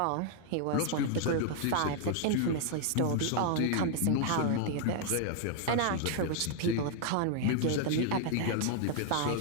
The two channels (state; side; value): different; both; correlation 0.00